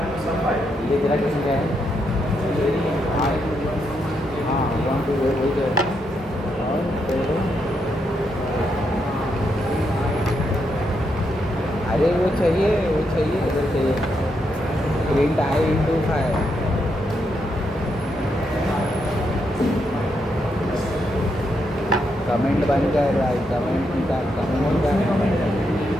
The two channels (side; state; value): both; normal; correlation 0.80